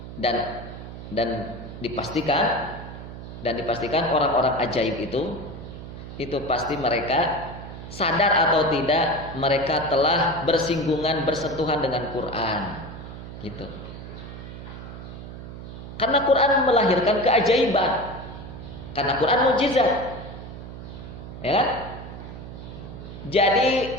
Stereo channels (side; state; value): right; noise; hum, 11 dB below the sound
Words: Dan dipastikan orang-orang ajaib itu pasti mereka sadar atau tidak mereka telah bersentuhan dengan Quran, gitu. Karena Quran melahirkan keajaiban, karena Quran mukjizat, ya kan? Jadi